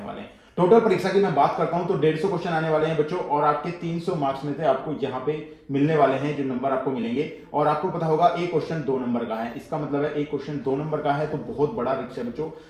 वाले हैं। टोटल परीक्षा की मैं बात करता हूं तो 150 क्वेश्चन आने वाले हैं बच्चों, और आपके 300 मार्क्स में से आपको यहाँ पे मिलने वाले हैं जो नंबर आपको मिलेंगे। और आपको पता होगा एक क्वेश्चन 2 नंबर का है, इसका मतलब है एक क्वेश्चन 2 नंबर का है तो बहुत बड़ा रिस्क है बच्चों।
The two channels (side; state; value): both; identical; correlation 1.00